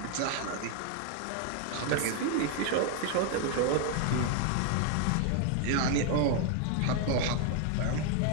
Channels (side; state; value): both; different; correlation 0.00